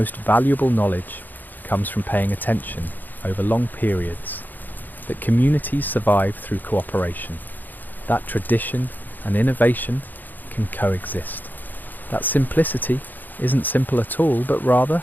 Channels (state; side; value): late; right; 0.087 ms